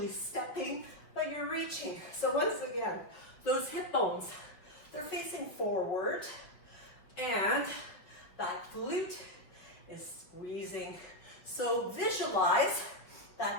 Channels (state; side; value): late; right; 5.1 ms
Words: stepping, but you're reaching. So once again, those hip bones, they're facing forward, and that glute is squeezing. So visualize